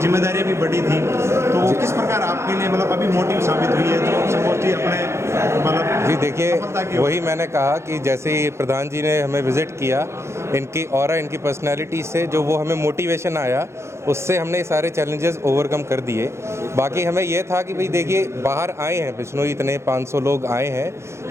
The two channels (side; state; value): left; late; 0.13 ms